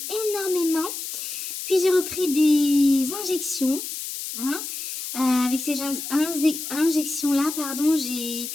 énormément. Puis j'ai repris des injections. Hein. Avec ces injections-là, pardon, j'ai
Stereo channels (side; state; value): left; noise; hiss, 7 dB below the sound